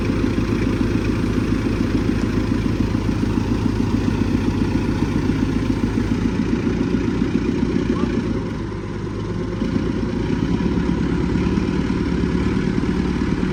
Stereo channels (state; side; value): identical; both; correlation 1.00